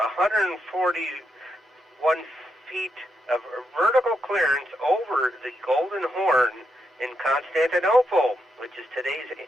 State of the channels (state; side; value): normal; both; correlation 0.82